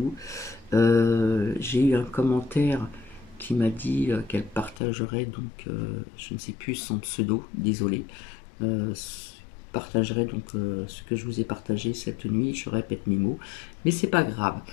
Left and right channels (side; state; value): right; drops out; at 4.8 s